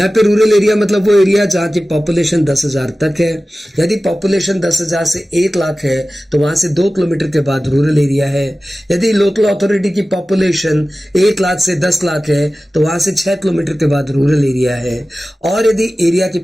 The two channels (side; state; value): both; normal; correlation 0.96